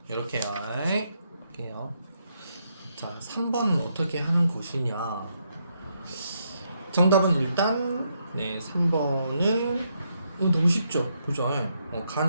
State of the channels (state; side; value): inverted; both; correlation -0.78